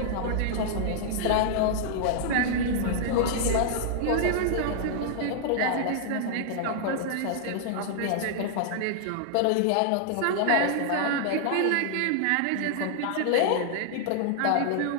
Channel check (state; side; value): different; both; correlation -0.01